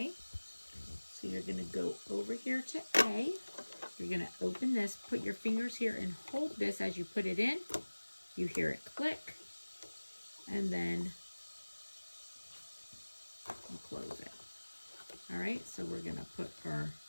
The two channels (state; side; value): inverted; both; correlation -1.00